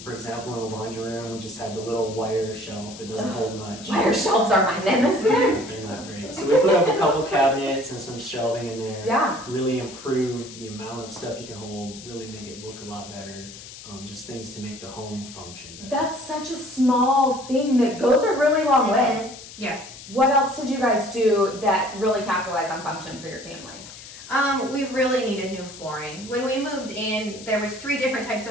For example, in the laundry room, we just had the little wire shelf that doesn't hold much. Wire shelves are my nemesis. They're not great. So we put up a couple cabinets and some shelving in there. Yeah. Really improve the amount of stuff you can hold, really make it look a lot better. Just things to make the home function better. That's such a small thing that goes a really long way. Yeah. What else did you guys do that really capitalized on function for your family? We really needed new flooring. When we moved in, there was 3 different types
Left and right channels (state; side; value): noise; left; hiss, 15 dB below the sound